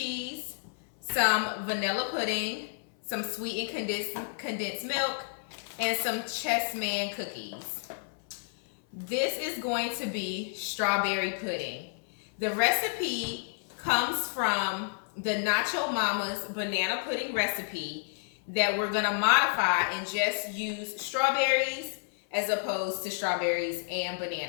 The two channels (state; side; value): silent; right; 58 dB below the other